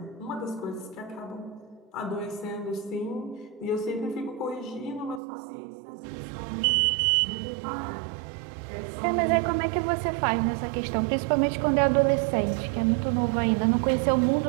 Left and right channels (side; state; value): left; drops out; at 5.2 s